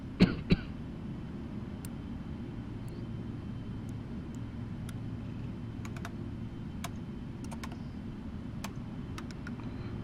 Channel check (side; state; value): both; identical; correlation 1.00